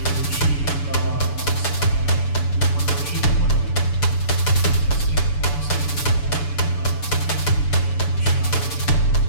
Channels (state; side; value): late; right; 7.0 ms